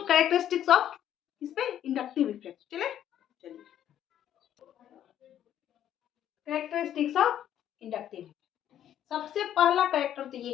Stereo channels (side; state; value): right; quieter; 10.8 dB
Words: कैरेक्टरिस्टिक्स ऑफ इस पे इंडक्टिव इफेक्ट। चलिए कैरेक्टरिस्टिक्स ऑफ इंडक्टिव, सबसे पहला कैरेक्टर तो ये